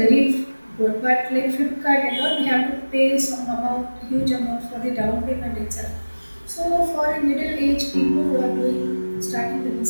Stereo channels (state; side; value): inverted; both; correlation -1.00